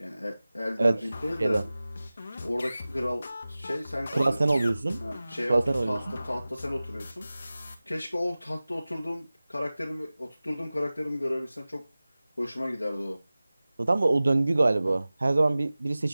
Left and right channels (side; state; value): both; inverted; correlation -0.97